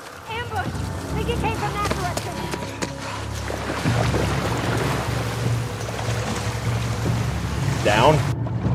Think it came from that direction. Down.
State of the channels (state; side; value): identical; both; correlation 1.00